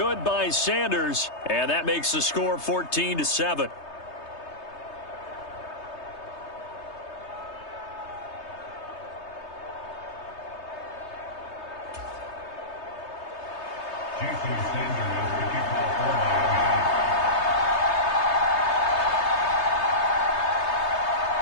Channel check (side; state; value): right; late; 3.3 ms